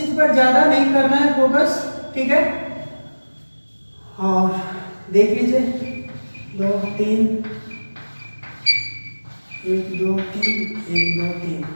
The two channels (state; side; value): inverted; both; correlation -1.00